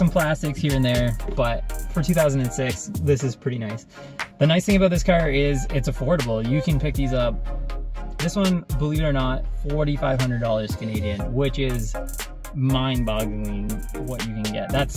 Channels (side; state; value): both; identical; correlation 1.00